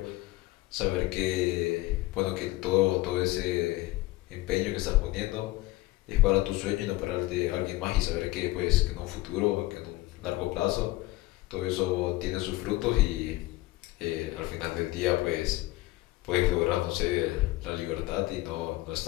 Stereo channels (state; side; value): quieter; right; 18.9 dB